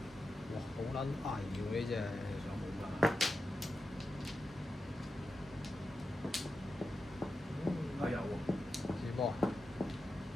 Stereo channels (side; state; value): both; normal; correlation 0.90